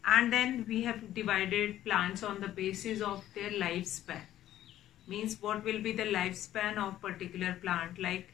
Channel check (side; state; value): right; quieter; 12.8 dB